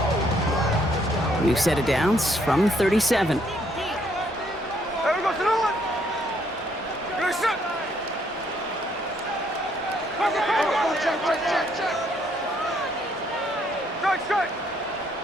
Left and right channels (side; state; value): both; normal; correlation 0.69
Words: New set of downs from 37. There we go, Salute. Good shot. Check. Strike.